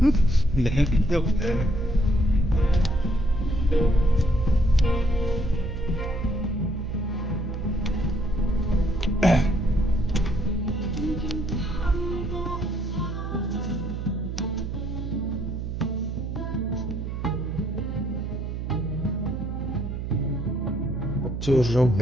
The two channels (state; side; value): noise; right; hum, 5 dB below the sound